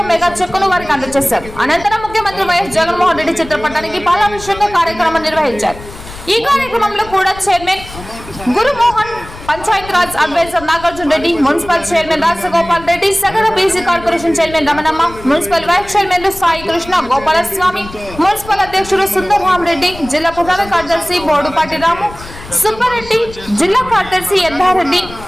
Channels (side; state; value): left; noise; rumble, 16 dB below the sound